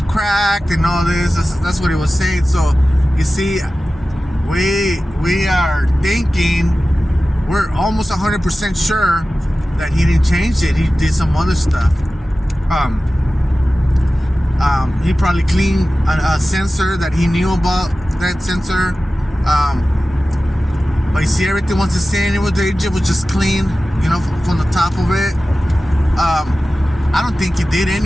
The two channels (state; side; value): normal; both; correlation 0.95